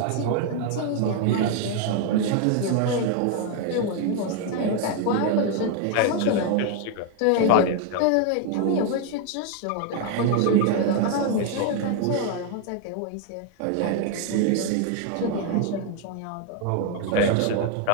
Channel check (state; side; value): different; both; correlation 0.00